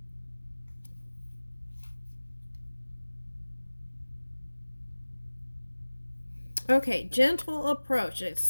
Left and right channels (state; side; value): inverted; both; correlation -1.00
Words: Okay, gentle approach. It's